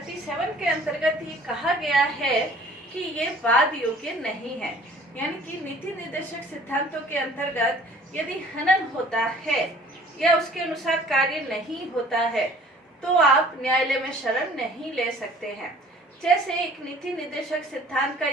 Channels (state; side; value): normal; both; correlation 0.52